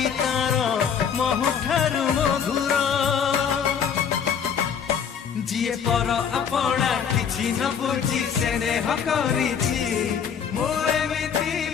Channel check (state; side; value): quieter; right; 7.4 dB